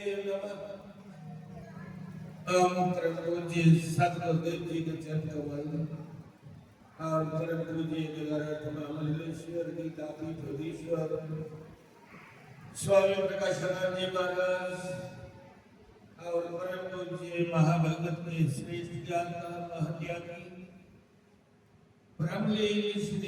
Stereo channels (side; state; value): both; identical; correlation 1.00